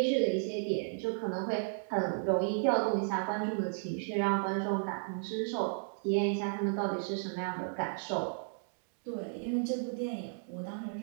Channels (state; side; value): silent; left; digital silence